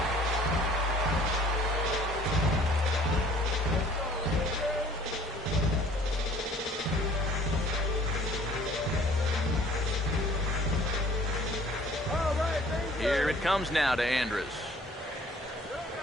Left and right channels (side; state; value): both; normal; correlation 0.54